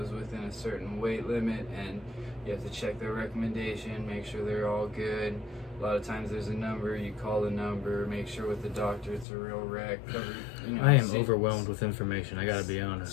within a certain weight limit, and you have to check their recommendation, make sure they're all good. A lot of times there's a number, you call the number, make sure with the doctor it's a real rec, cover, you know. I am overwhelmed with information, I gotta be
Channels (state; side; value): drops out; right; at 9.2 s